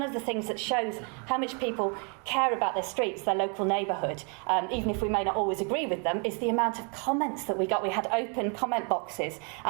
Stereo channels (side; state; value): left; quieter; 36.6 dB